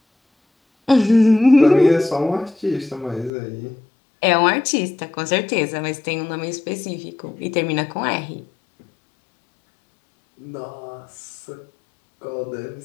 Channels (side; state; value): right; drops out; at 3.3 s